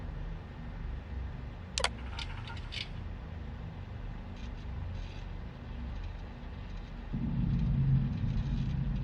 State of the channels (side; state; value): both; identical; correlation 1.00